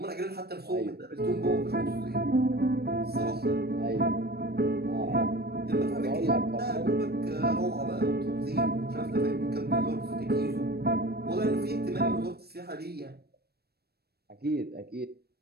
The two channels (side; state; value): left; late; 0.46 ms